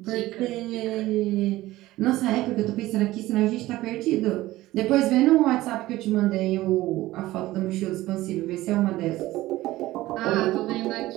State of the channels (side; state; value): left; quieter; 17.0 dB